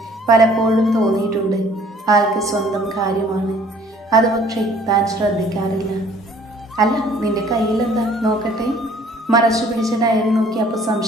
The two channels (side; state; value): both; normal; correlation 0.56